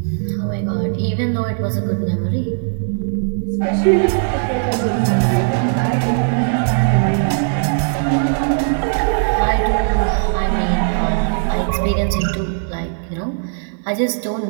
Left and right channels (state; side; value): silent; left; 67 dB below the other